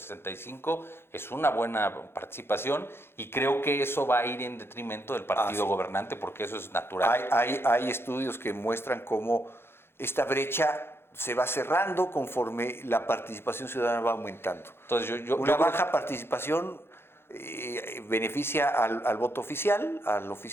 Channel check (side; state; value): right; late; 0.11 ms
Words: es una buena participación y creo que eso va a ir en detrimento del partido gobernante porque eso es natural. Hay estudios que muestran cómo esta brecha se va cerrando conforme la participación ciudadana va aumentando. Entonces una baja participación beneficia al voto oficial, al